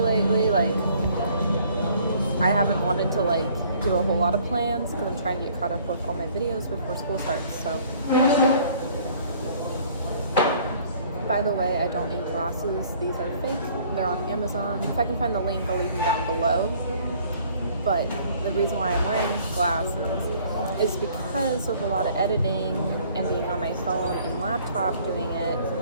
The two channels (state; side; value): inverted; both; correlation -0.57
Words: like, I haven't wanted to like do a whole lot of plans because I'm trying to get caught up with all my videos before school starts. So, by the way, I don't need glasses. These are fake. They're on Amazon. If I can find the link, I'll leave them down below. But the reason why I'm wearing glasses is because of a lot of editing and being on my phone and laptop doing it,